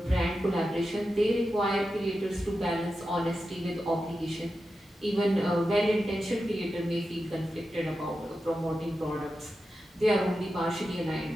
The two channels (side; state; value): both; normal; correlation 0.91